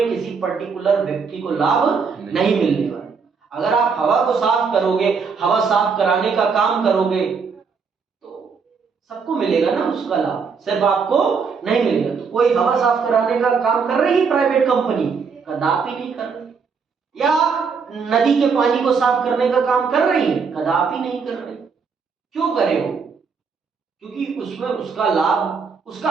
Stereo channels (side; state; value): left; quieter; 5.6 dB